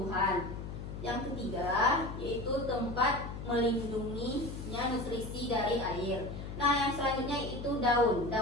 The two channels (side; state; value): left; noise; hum, 8 dB below the sound